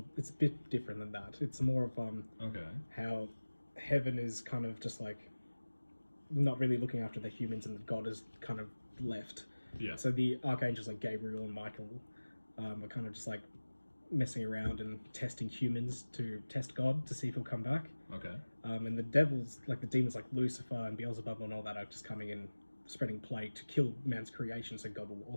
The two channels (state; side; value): inverted; both; correlation -1.00